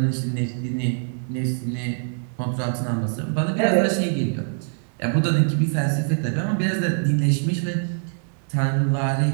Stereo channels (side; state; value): left; silent; digital silence